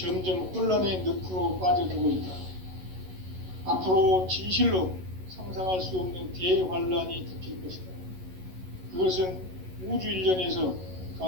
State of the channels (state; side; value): late; left; 11 ms